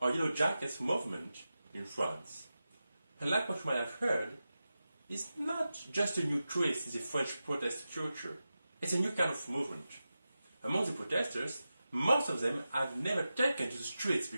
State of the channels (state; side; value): inverted; both; correlation -0.93